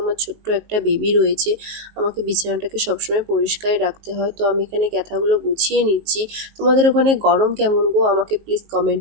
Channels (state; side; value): late; left; 19 ms